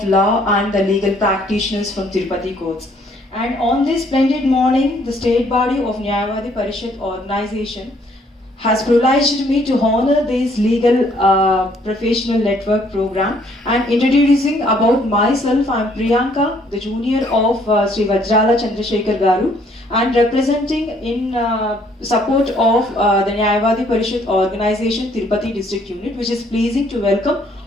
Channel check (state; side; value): normal; both; correlation 0.64